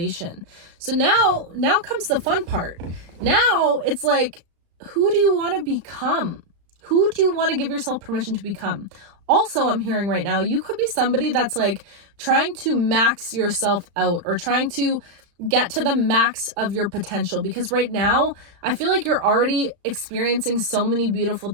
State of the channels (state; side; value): late; left; 35 ms